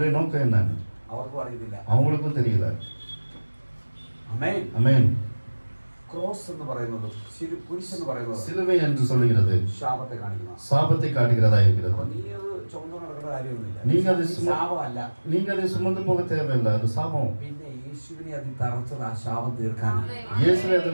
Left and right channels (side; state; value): both; inverted; correlation -1.00